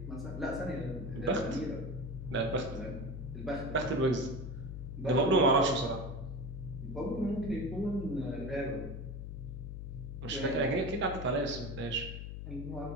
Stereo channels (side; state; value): left; noise; hum, 7 dB below the sound